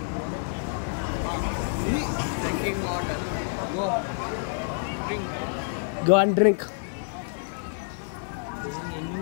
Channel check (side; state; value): right; silent; digital silence